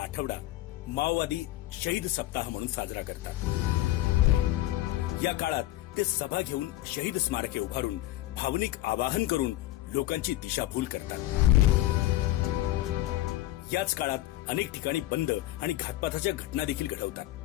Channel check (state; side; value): quieter; right; 15.9 dB